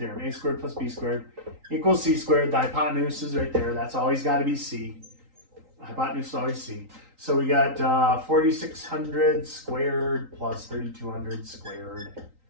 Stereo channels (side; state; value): left; late; 3.8 ms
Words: A squared plus B squared equals C squared. The hypotenuse is right there. That's always got to be C. The hypotenuse is always C. So we got 4,600 squared plus 3,200 squared